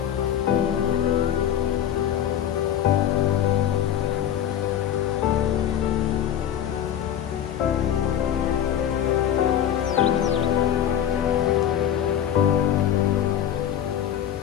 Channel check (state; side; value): quieter; right; 10.1 dB